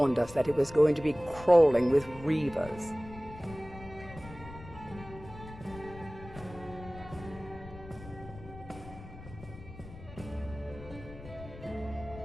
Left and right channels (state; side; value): noise; left; rumble, 15 dB below the sound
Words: us that it was going to be crawling with reavers.